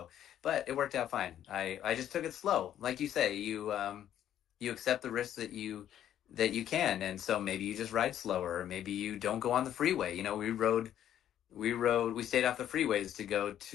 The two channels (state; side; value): quieter; right; 10.9 dB